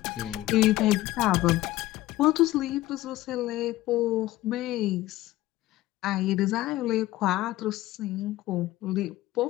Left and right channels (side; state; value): right; quieter; 16.5 dB